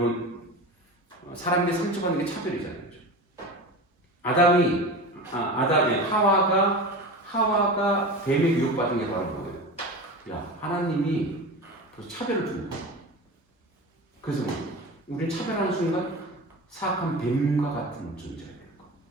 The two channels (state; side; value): normal; both; correlation 0.29